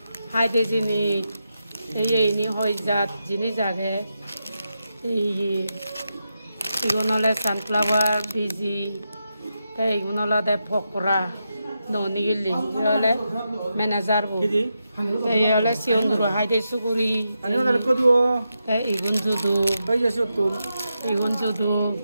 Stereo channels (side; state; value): both; inverted; correlation -0.87